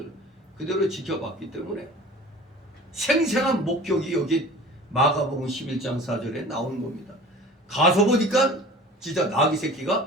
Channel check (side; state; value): both; normal; correlation 0.42